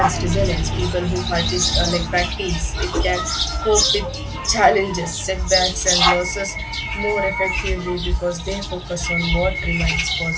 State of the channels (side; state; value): both; identical; correlation 1.00